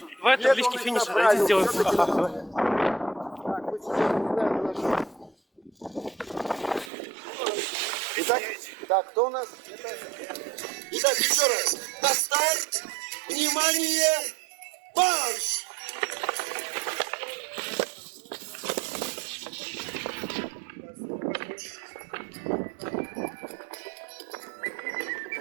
Давай таблички финиша, давайте сделаем. Так, мы сейчас не знаем, на что. Итак, кто у нас? Итак, еще раз. На старт! Внимание! Марш!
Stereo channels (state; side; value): drops out; left; at 6.9 s